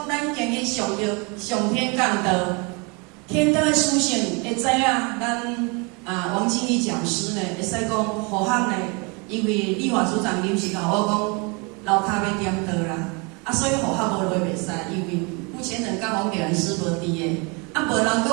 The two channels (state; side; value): quieter; left; 30.9 dB